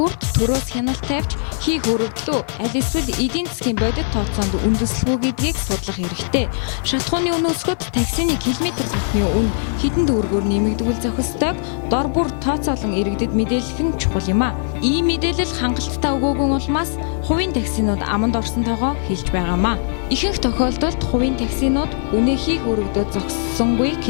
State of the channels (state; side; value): silent; right; digital silence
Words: төрөөс хяналт тавьж хийх өргөдлөө аль эсвэл эдийн засгийн бодит тооцоонд үндэслэхүү гэдгийг судлах хэрэгтэй. Шатхууны үн өсгөд таксины километр тутмын үн хэдэн төгрөгөөр нэмэгдвэл зохистойг дор бүр тооцоолон иргэдэд мэдээлэх нь чухал юм а. Ийм мэдээлэл хангалттай өгөөгүй улмаас хувийн таксинууд аманд орсон тоогоо хэлж байгаамаа. Ихэнх тохиолдолд хувийн таксинууд үнэ хийх өргөдөө зогссонгүй